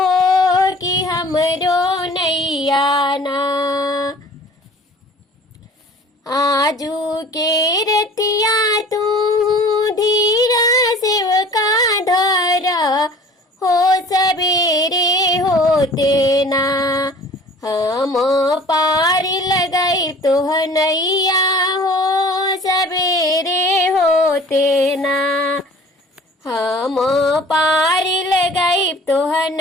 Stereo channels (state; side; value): normal; both; correlation 0.47